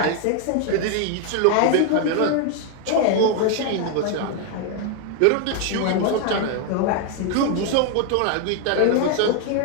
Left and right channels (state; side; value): different; both; correlation 0.00